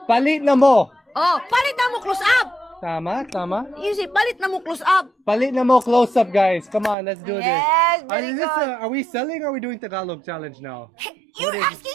Palit na mo. Oh, palit na mo close-up. Tama. You say, palit na mo close-up. Palit na mo close-up, guys. Come on, let's do this. Yes, very good. Are we selling or are we doing Tagalog challenge now? You're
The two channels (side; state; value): left; drops out; at 7.0 s